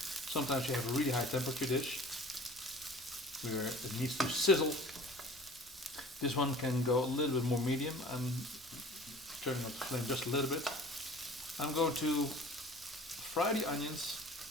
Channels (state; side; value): normal; both; correlation 0.44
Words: Sometimes you have a really high temperature dish where it needs to sizzle. This one can go a little bit more medium. I'm turning up the flame just a little bit. I'm going to fry the onions